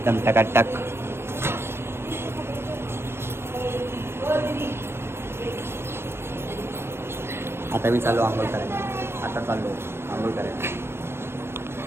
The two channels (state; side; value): late; left; 0.12 ms